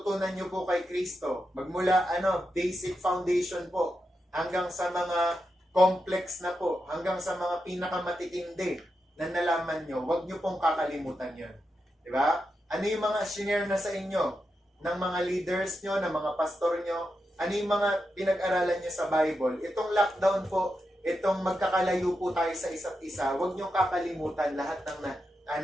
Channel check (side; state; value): both; normal; correlation 0.87